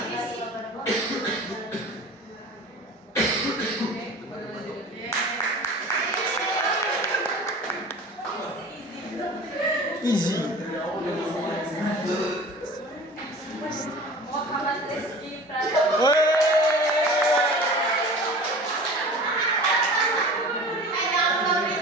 Easy. Muhammad Rizky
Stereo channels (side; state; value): both; normal; correlation 0.39